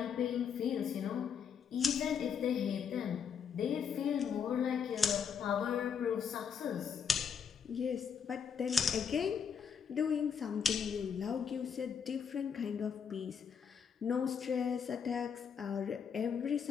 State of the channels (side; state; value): right; quieter; 7.1 dB